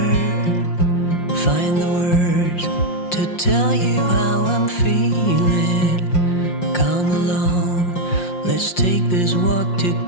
find the words to tell you how I'm feeling. Come along, let's take this walk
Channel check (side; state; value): right; late; 5.6 ms